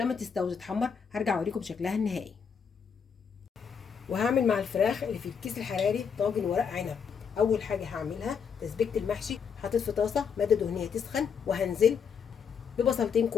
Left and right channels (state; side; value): quieter; right; 6.6 dB